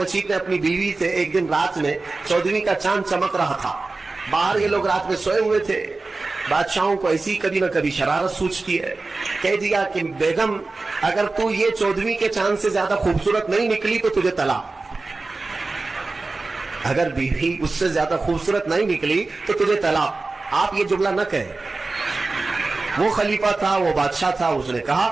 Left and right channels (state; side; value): quieter; left; 3.6 dB